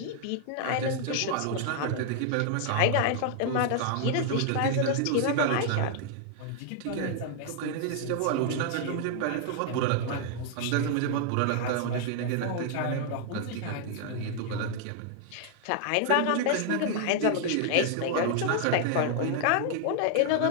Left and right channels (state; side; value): different; both; correlation 0.00